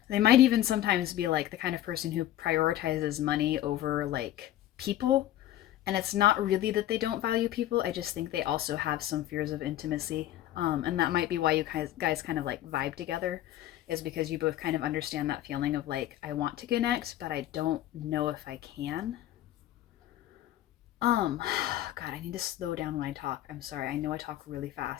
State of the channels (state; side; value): quieter; right; 13.3 dB